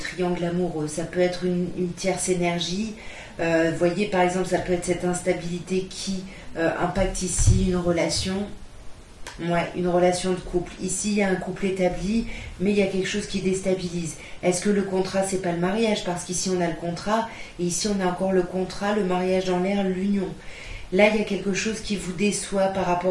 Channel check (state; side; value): identical; both; correlation 1.00